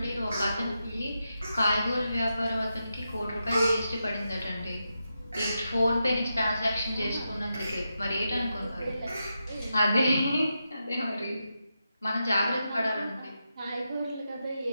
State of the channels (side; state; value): both; inverted; correlation -0.88